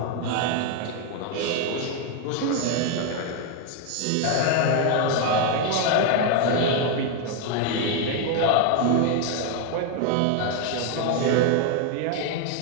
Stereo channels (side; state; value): both; different; correlation 0.01